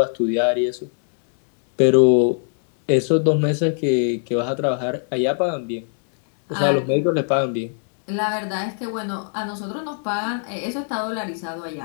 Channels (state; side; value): silent; right; 59 dB below the other